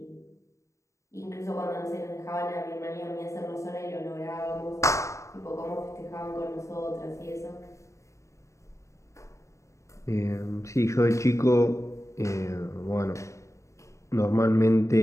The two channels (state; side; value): late; right; 0.14 ms